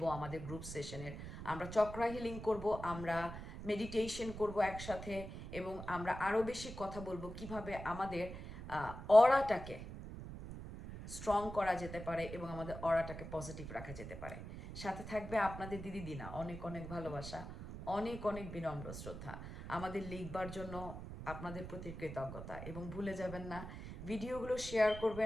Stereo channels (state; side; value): noise; right; rumble, 10 dB below the sound